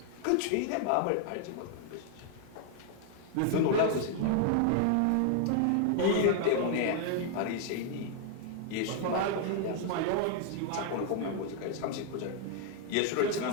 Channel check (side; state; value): both; different; correlation 0.00